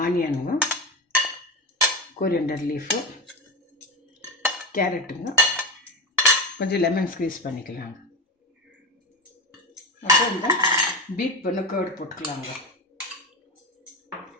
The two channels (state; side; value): normal; both; correlation 0.19